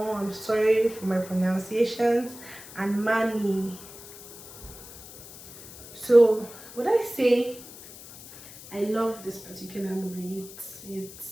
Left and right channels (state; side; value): noise; left; hiss, 16 dB below the sound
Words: I'm sorry for my pronunciations, and Mani. So would I say I love this particular movie? It's